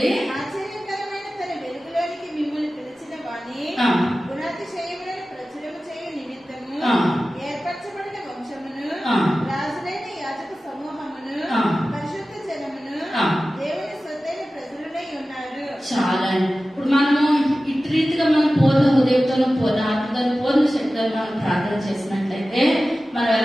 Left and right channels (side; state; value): both; normal; correlation 0.95